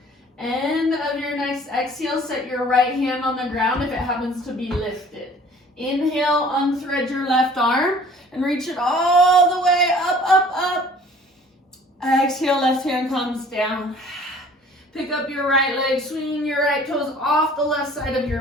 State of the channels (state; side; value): normal; both; correlation 0.51